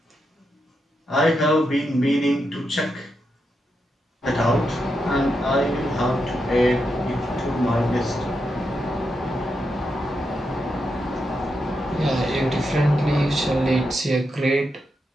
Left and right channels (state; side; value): normal; both; correlation 0.84